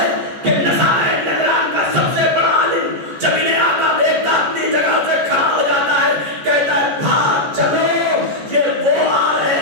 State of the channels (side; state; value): left; late; 14 ms